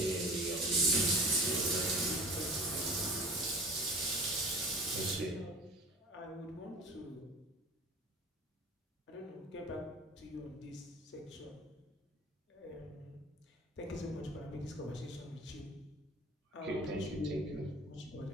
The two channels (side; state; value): both; normal; correlation 0.41